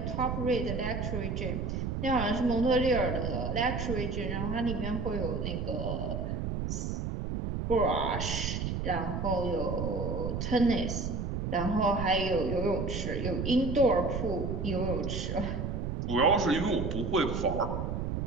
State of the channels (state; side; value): noise; right; rumble, 2 dB below the sound